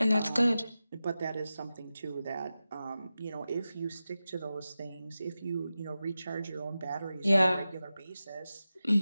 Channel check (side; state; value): both; inverted; correlation -0.93